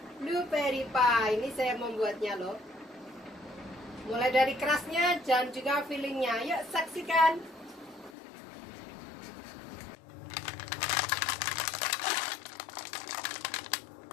blueberry pie. Ini saya membuatnya loh. Mulai dari kerasnya dan juga fillingnya. Yuk saksikan.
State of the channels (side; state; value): right; drops out; at 8.2 s